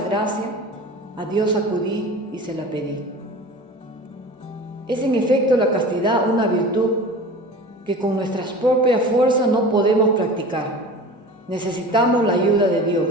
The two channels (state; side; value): normal; both; correlation 0.37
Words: gracia, a Dios acudí y se la pedí. Es en efecto la castidad una virtud que con nuestras propias fuerzas no podemos practicar. Necesitamos la ayuda de